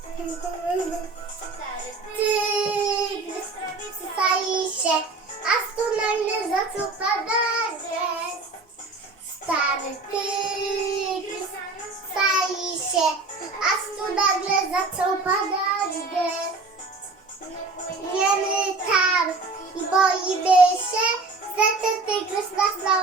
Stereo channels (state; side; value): quieter; left; 3.7 dB